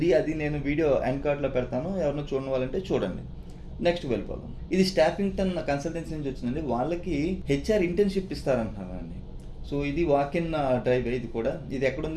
అది నేను వీడియో ఎండ్ కార్డ్లో పెడతాను, ఎవరైనా చూడని వాళ్ళంటే చూడండి. నెక్స్ట్ వెళ్ళిపోదాం. ఇది స్టాఫింగ్టన్ కన్సల్టెన్సీ నుంచి వచ్చిందండి. వాళ్ళకి హెచ్ఆర్ ఇంటర్న్షిప్ ఇస్తారంటున్నారండి. సో ఇది వాక్ ఇన్ డ్రైవ్. ఇది కూడా ఇది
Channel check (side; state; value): both; identical; correlation 1.00